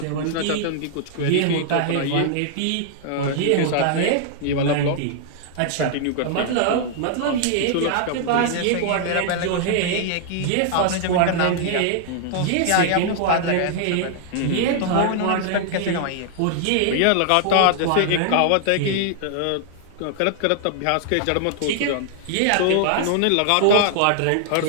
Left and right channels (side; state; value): both; different; correlation -0.01